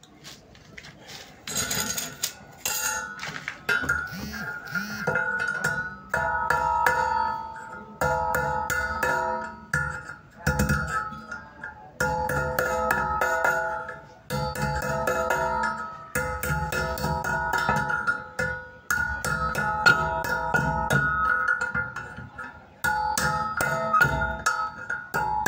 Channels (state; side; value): identical; both; correlation 1.00